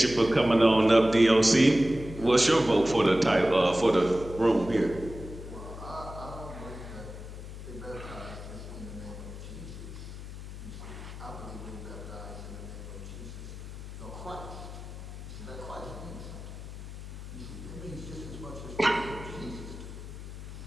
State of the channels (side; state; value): left; noise; hum, 11 dB below the sound